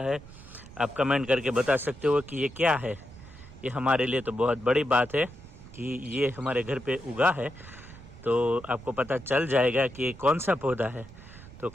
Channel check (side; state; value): right; noise; rumble, 18 dB below the sound